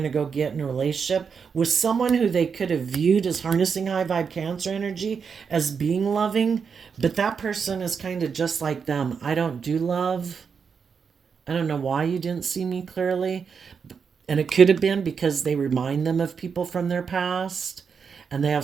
to go get in a relationship with someone who they could have viewed as harnessing high vibe Cancer energy as being loving, but that person is kind of just like them. I don't do love. I don't know why you didn't see me clearly. And it could have been because they remind them of people from their past and they have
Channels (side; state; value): left; quieter; 6.1 dB